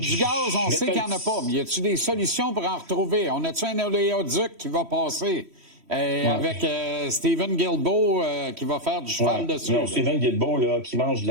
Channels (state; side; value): late; left; 3.1 ms